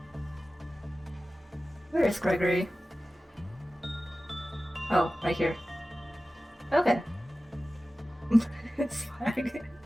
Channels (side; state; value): both; normal; correlation 0.95